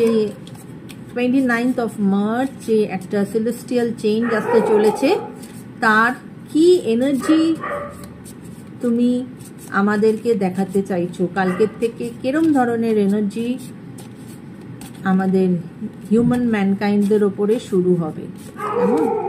29th of March যে একটা সেলেস্টিয়াল চেঞ্জ আসতে চলেছে, তার কি এনার্জি তুমি আমাদেরকে দেখাতে চাইছো? কালকের থেকে কিরম ধরনের এনার্জি আমাদের হিউম্যান ম্যানকাইন্ডদের ওপরে শুরু হবে? কেমন?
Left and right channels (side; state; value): both; identical; correlation 1.00